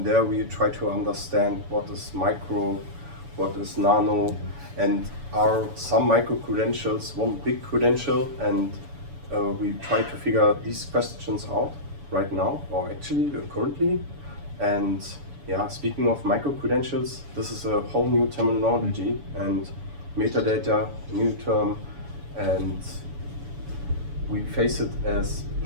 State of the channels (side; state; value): left; late; 7.0 ms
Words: there we try to understand what is micro, what is nano, and are some micro-credentials one big credential, and we try to figure these questions out right now, or actually currently. And yeah, speaking of micro-credentials, this is a whole new terminology, and metadata, new term, and we face it as